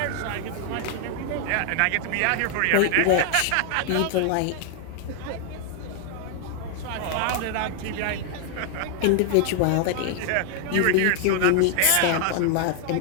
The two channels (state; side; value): different; both; correlation 0.00